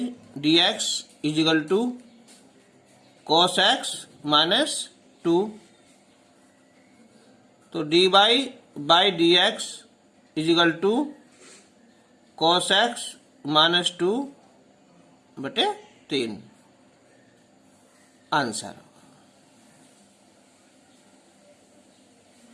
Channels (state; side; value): identical; both; correlation 1.00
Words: d x is equal to cos x minus 2। तो dy by d x is equal to cos x minus 2 बटे 3 आंसर।